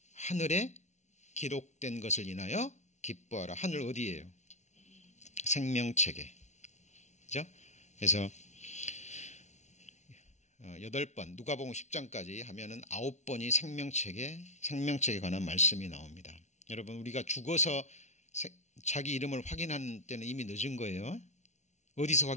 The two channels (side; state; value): right; late; 0.33 ms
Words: 하늘에 기록된 것을 인하여 기뻐하라. 하늘 어디예요? 생명책에. 그죠? 그래서 8번 누가복음 10장까지 하면은 9번이 생명책에 관한 말씀이 나옵니다. 여러분 우리가 죽어서 자기 이름을 확인하는 때는 이미 늦은 거예요. 어디서